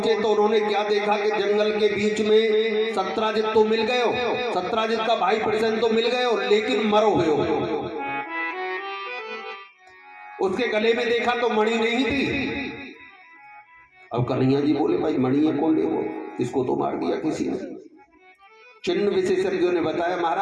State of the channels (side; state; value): both; identical; correlation 1.00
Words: तो उन्होंने क्या देखा कि जंगल के बीच में सत्राजित तो मिल गए हो, सत्राजित का भाई प्रसन्न तो मिल गए हो, लेकिन मरो हुए हो। उसके गले में देखा तो मणि नहीं थी। अब कन्हैया जी बोले भाई मणि है कौन ले, वो इसको तो मार दिया किसी ने। चिन्ह विशेषज्ञों ने बताया